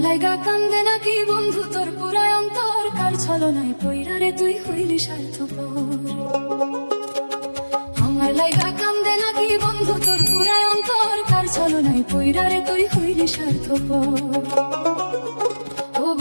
লাইগা কান্দে নাকি বন্ধু তোর পুরায় অন্তর, কার ছলনায় পইরা রে তুই হইলি স্বার্থপর। আমার লাইগা কান্দে নাকি বন্ধু তোর পুরায় অন্তর, কার ছলনায় পইরা রে তুই হইলি স্বার্থপর। ও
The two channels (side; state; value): both; inverted; correlation -1.00